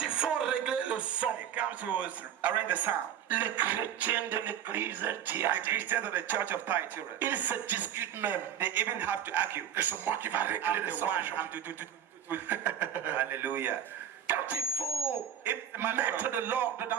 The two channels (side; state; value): left; quieter; 9.5 dB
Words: il faut régler le son, They come to arrange the sound. les chrétiens de l'église de The Thyatire, Christians of the church of Thyatira, ils se discutent même. they even have to argue. Et c'est moi qui va régler I'm le the son. one. I'm Hallelujah. Quand il faut If the matter mettre of de l'ordre